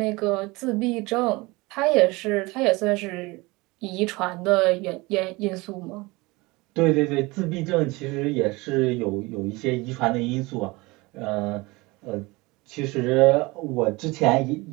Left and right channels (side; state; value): left; quieter; 23.3 dB